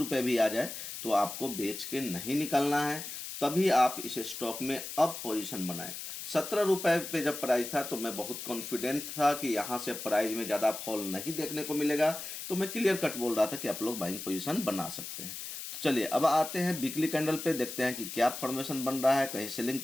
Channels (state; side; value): noise; left; hiss, 8 dB below the sound